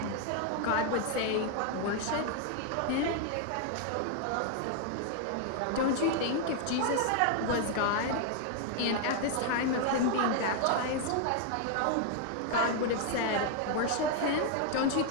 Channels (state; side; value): different; both; correlation 0.00